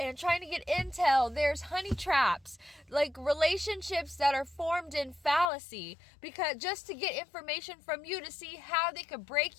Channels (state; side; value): drops out; right; at 5.5 s